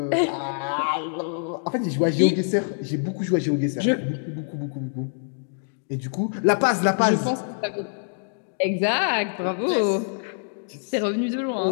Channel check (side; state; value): right; silent; digital silence